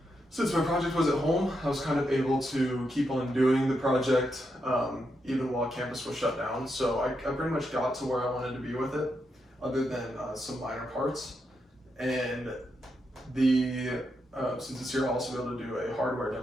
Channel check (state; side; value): normal; both; correlation 0.83